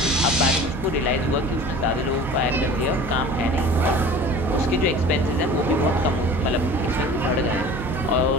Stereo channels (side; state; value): both; normal; correlation 0.41